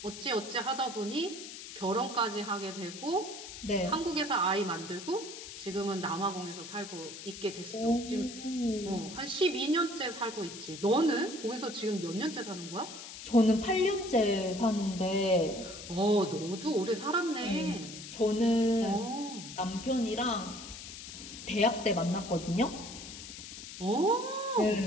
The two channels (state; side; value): noise; left; hiss, 12 dB below the sound